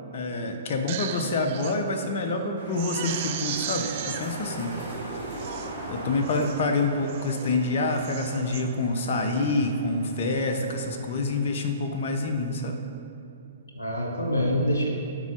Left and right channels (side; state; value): both; inverted; correlation -0.44